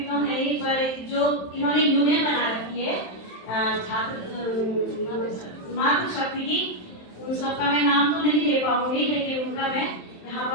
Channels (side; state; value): right; late; 27 ms